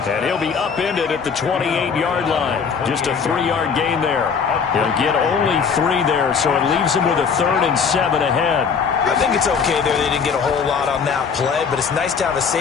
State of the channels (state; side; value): quieter; right; 6.1 dB